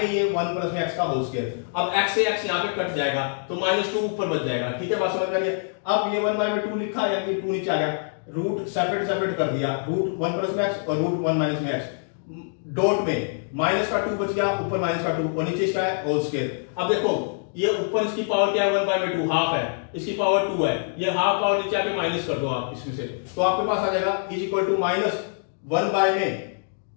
ये 1 प्लस में x का होल स्क्वायर, अब x से x यहाँ पे कट जाएगा, तो -2 ऊपर बच जाएगा, ठीक है, बात समझ में आ रही है। अब ये 1 बाय में 2 लिखा, यानी कि 2 नीचे आ गया, रूट सेपरेट कर दिया, रूट 1 प्लस में x और रूट 1 माइनस में x, डॉट में माइनस का 2 बच गया, ऊपर माइनस का 2 और नीचे इसका है होल स्क्वायर। अब देखो ये ऊपर इसकी पावर क्या है, 1 बाय में 2 हाफ है, इसकी पावर 2 है, ये हाफ पावर नीचे आके माइनस कर दो आप इसमें से, तो आपके पास आ जाएगा इज इक्वल टू -1 बाय में,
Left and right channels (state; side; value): silent; right; digital silence